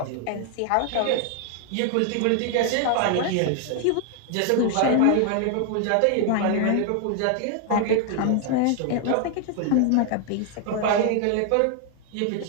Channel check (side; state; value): both; different; correlation 0.00